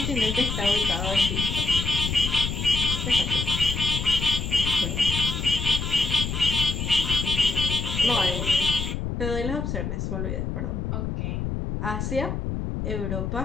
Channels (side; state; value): left; noise; rumble, 3 dB below the sound